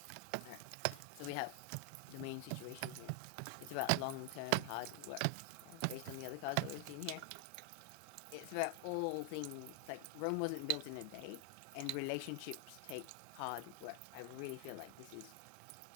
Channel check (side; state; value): both; different; correlation 0.00